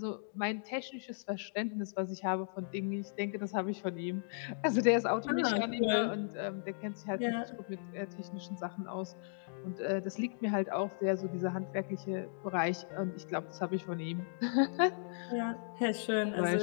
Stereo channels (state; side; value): silent; right; digital silence